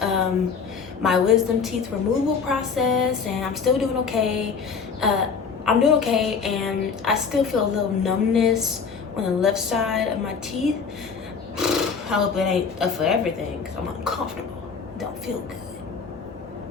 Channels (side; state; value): right; quieter; 5.7 dB